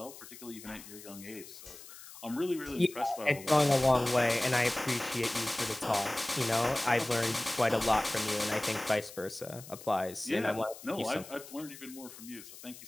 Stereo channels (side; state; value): left; noise; hiss, 16 dB below the sound